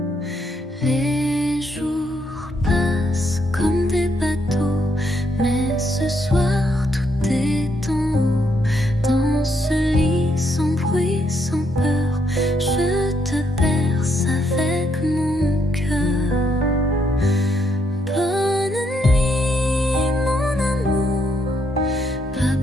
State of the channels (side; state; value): both; normal; correlation 0.75